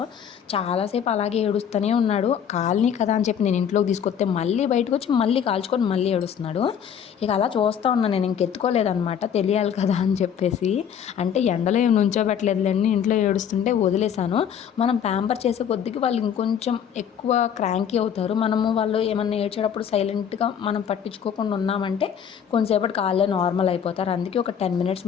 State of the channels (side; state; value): right; quieter; 8.3 dB